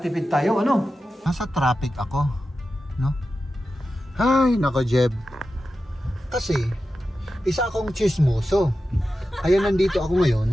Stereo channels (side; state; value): both; normal; correlation 0.92